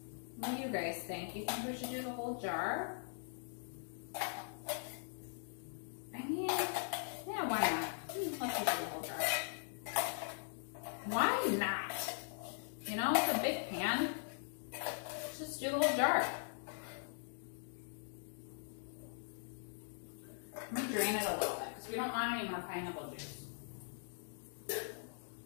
what do you guys think? You think we should do the whole jar? I mean, yeah, why not? Let's just do the whole jar. Why not? You know, it's a big pan. Let's just do the whole jar. Let me drain it a little bit because we don't want any more pineapple juice.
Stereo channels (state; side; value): silent; right; digital silence